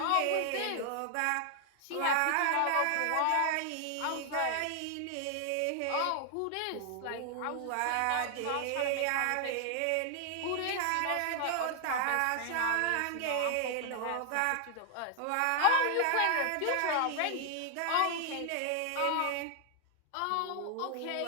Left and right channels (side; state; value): both; different; correlation 0.00